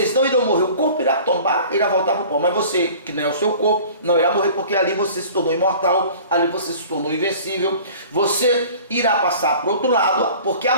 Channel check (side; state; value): both; inverted; correlation -0.44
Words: não irão morrer, o corpo irá tombar, irá voltar para o pó, mas você, que não é o seu corpo, não irá morrer, porque ali você se tornou imortal, ali você se tornou invencível, você irá passar para o outro lado, porque a